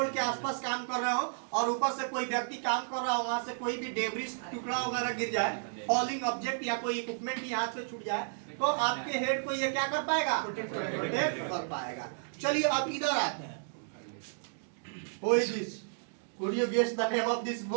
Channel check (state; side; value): silent; left; digital silence